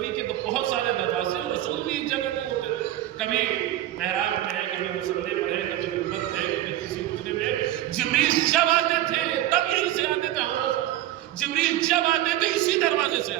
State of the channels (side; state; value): left; quieter; 14.0 dB